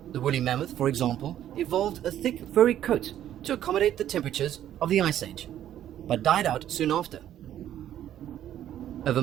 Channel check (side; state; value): left; quieter; 11.4 dB